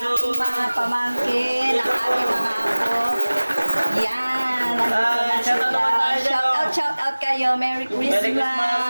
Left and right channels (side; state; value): both; inverted; correlation -1.00